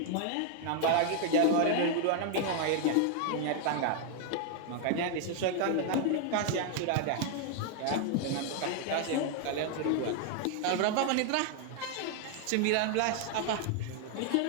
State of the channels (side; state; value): both; different; correlation 0.00